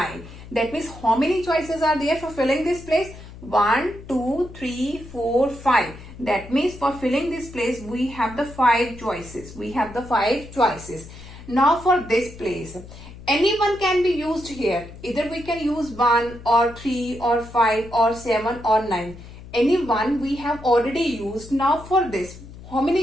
That means how many choices are there for filling this place? 1, 2, 3, 4, 5. That means for filling this place, we have the 5 choices. We have the 5 choices. Now for this place, anyone can be used here. Either we can use 1 or 3 or 5 or 7 or 9. Any one we have already used. Now for this, how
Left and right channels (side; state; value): left; noise; hum, 16 dB below the sound